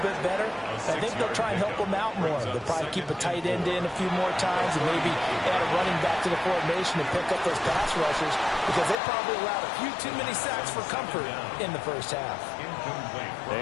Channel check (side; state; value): right; drops out; at 9.0 s